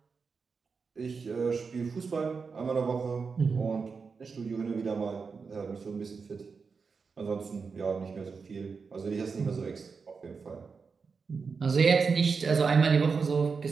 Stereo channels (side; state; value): left; quieter; 5.1 dB